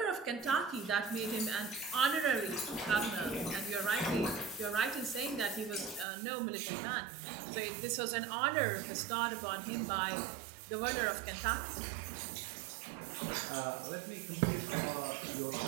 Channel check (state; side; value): drops out; left; at 6.1 s